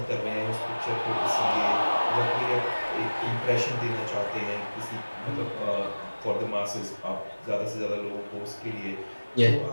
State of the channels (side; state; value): both; inverted; correlation -1.00